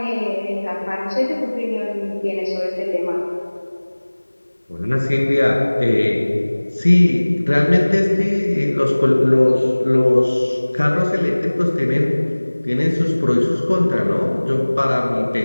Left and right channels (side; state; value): both; inverted; correlation -1.00